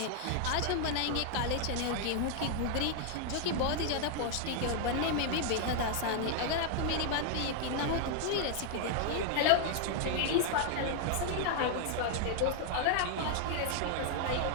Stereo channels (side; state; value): both; different; correlation 0.00